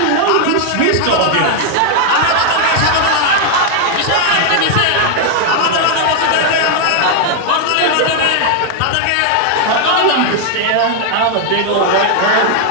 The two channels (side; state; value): both; different; correlation 0.00